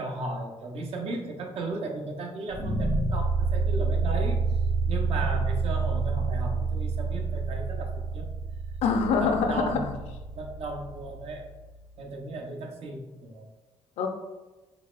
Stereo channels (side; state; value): both; normal; correlation 0.62